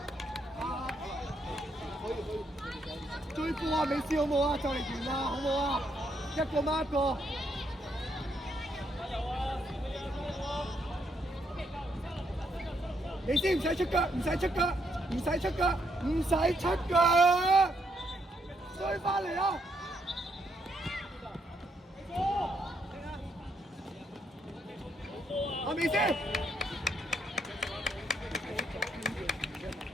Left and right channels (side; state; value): both; normal; correlation 0.75